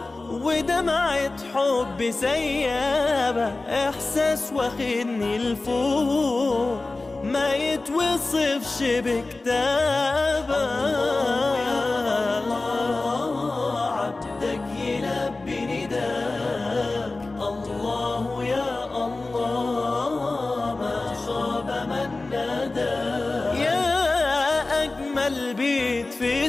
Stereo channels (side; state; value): right; quieter; 3.3 dB